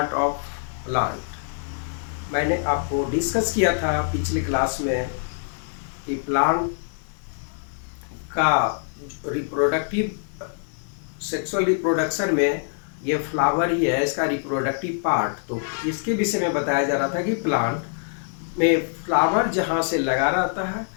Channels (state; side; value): silent; right; 57 dB below the other